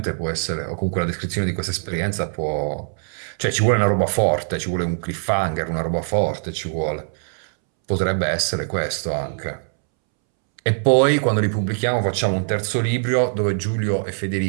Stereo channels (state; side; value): silent; left; 64 dB below the other